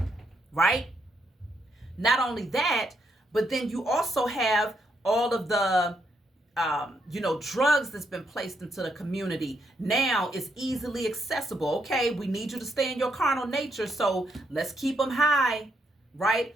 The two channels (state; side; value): normal; both; correlation 0.77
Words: right? Not only that, but then you also have all of the drugs that's been placed into the community. Now it's easily accessible. Okay, we need you to stay in your carnal nature, so let's keep them high,